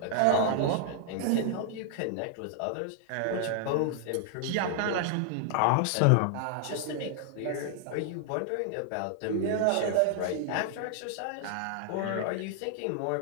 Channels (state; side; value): different; both; correlation 0.00